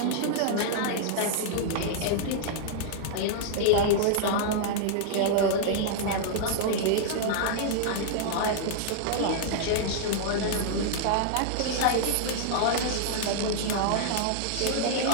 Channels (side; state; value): both; different; correlation -0.01